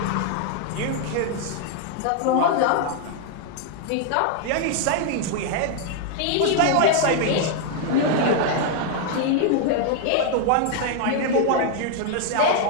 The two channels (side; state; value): both; different; correlation 0.00